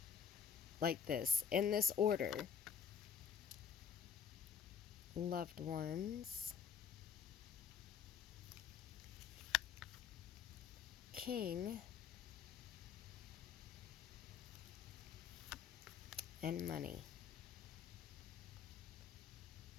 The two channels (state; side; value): quieter; right; 7.3 dB